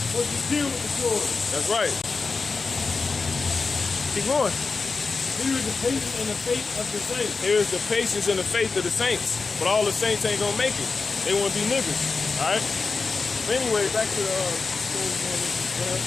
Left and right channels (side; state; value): right; quieter; 4.4 dB